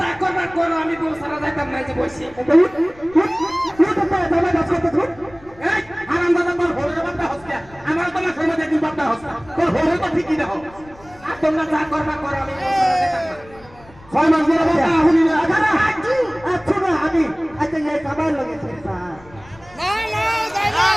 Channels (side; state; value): left; noise; rumble, 24 dB below the sound